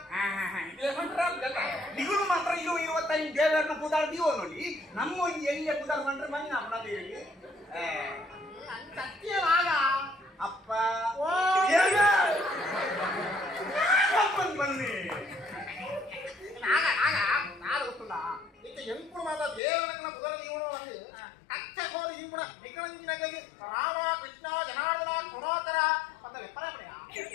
ನಿಗುಳು ಮಾತ್ರ ಇದು 25 ದೇವರನ್ನ ಪುದಾರ್ ದೀವೋ ನೋಡಿ ನಮ್ಮ ಒಂದು ಎಣ್ಣೆ ಪುದಾರ್ ಮಾಡ್ರೆ ಮನೆ ನಾವು ನಮಗೆ ಅಪ್ಪ ಬನ್ನಿ ಎಂಪುಡು ಮಾತ್ರ ದೇವರನ್ನ ಪುದರ ನೀವು ಅಚ್ಚ ಕೋರಿ ಇಂಪುಡ ನಿಕ್ಕಳಂಚಿನಾಗಿ ರಾಮ ಕೃಷ್ಣ ಜನಾರ್ದನ ಗುಣೋತ್ತರ ಅಂತ ಲೆಪ್ಪರಪಡೆಯ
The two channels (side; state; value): right; drops out; at 19.6 s